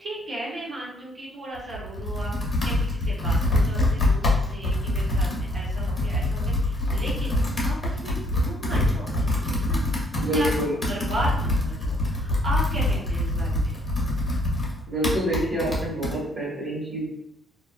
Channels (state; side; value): normal; both; correlation 0.64